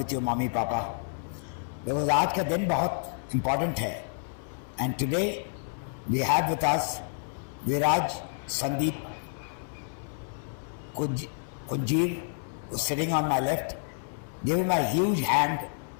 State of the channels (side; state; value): right; silent; 56 dB below the other